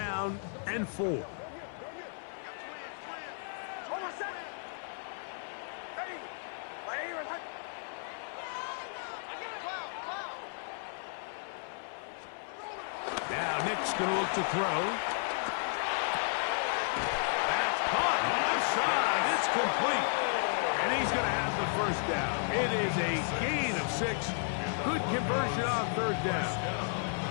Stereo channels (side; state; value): right; silent; 55 dB below the other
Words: and 4. Hold on, son. Ready. Now Nick's going to look to throw. That's caught left side. It's complete. And he's going to have the first down. It is a gain of 6. Good conversion on 3rd down.